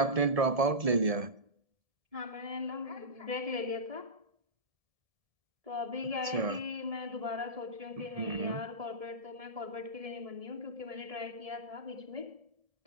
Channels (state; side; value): late; left; 1.7 ms